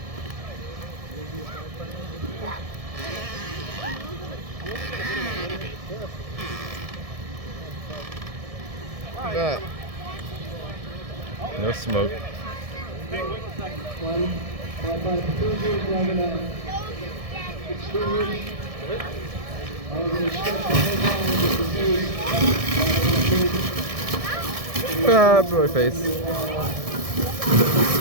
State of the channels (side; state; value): left; late; 1.7 ms